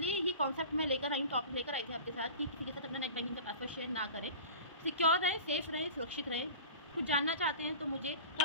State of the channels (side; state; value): both; inverted; correlation -0.37